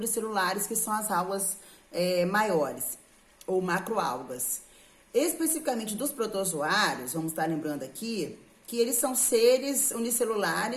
que são as algas maiores, ou macroalgas. Especificamente dos protozoários, vamos estar lembrando aqui, que eles são seres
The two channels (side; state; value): both; identical; correlation 1.00